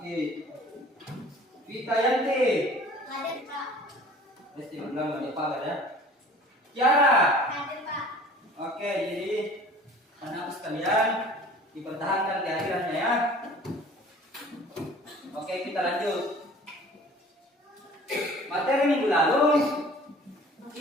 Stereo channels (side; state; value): both; normal; correlation 0.47